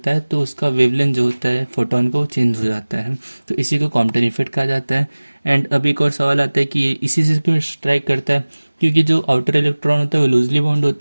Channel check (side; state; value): both; inverted; correlation -1.00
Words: है तो उसका वेवलेंथ जो होता है फोटोन का वो चेंज हो जाता है। तो इसी को कॉम्पटन इफेक्ट कहा जाता है। एंड अब एक और सवाल आता है कि ये इसी से क्यों स्ट्राइक करता है, क्योंकि जो आउटर इलेक्ट्रॉन होता है वो लूजली बाउंड